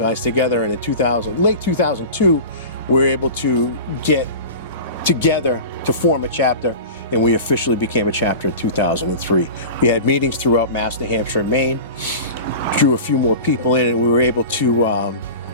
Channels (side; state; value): both; inverted; correlation -0.34